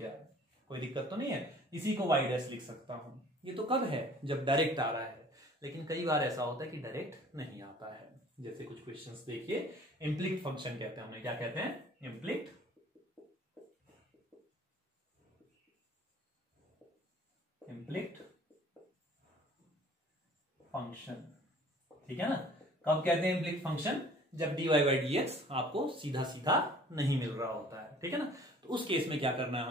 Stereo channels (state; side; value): normal; both; correlation 0.51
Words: कोई दिक्कत तो नहीं है, इसी को y डैश लिख सकता हूं। ये तो कब है, जब डायरेक्ट आ रहा है, लेकिन कई बार ऐसा होता है कि डायरेक्ट नहीं आता है। जैसे कुछ क्वेश्चंस देखिए, इम्प्लिक्ट फंक्शन कहते हैं, हमें क्या कहते हैं, इम्प्लिक्ट फंक्शन, ठीक है ना। कब कहते हैं इम्प्लिक्ट फंक्शन, जब dy बाई डी एक्स आपको सीधा सीधा नहीं मिल रहा होता है, ठीक है ना। तो उस केस में क्या करना है